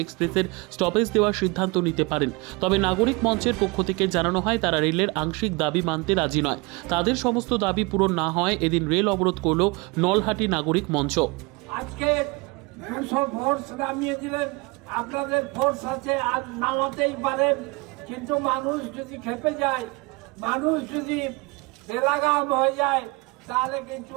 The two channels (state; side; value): quieter; left; 26.3 dB